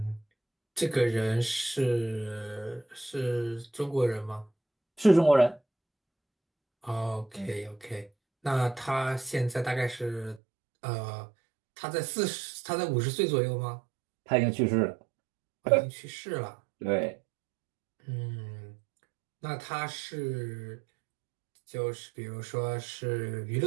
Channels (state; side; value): drops out; left; at 10.4 s